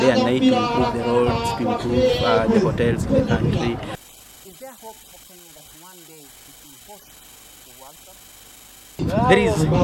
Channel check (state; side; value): identical; both; correlation 1.00